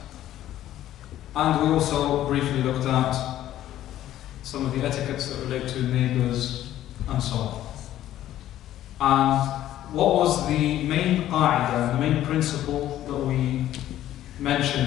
and we also briefly looked at some of the etiquettes that relate to neighbours and so on. And what was the main qa'idah, the main principle that we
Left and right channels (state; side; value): quieter; right; 12.9 dB